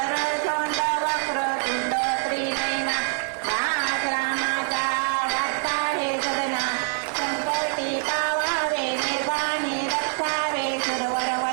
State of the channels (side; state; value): left; silent; 62 dB below the other